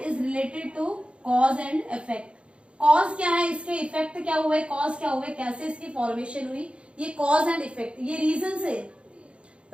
related to cause and effect. Cause क्या है, इसके इफेक्ट क्या हुए, कॉज क्या हुए, कैसे इसकी फॉर्मेशन हुई, ये कॉज एंड इफेक्ट, ये रीजन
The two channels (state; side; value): late; left; 0.058 ms